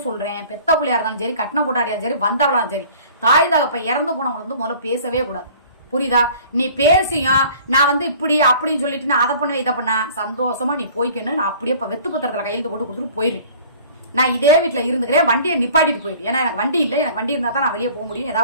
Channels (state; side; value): inverted; both; correlation -0.49